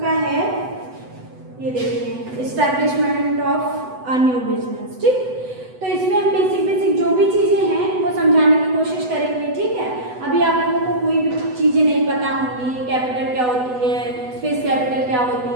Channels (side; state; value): left; late; 8.0 ms